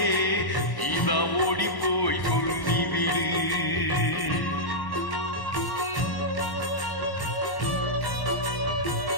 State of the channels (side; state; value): right; late; 1.1 ms